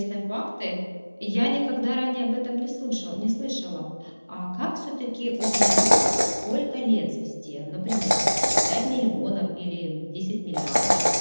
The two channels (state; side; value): inverted; both; correlation -1.00